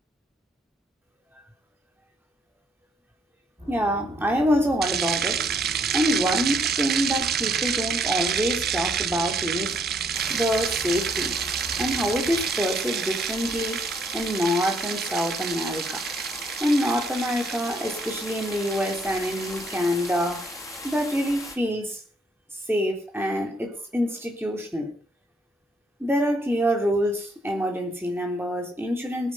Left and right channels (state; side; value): normal; both; correlation 0.70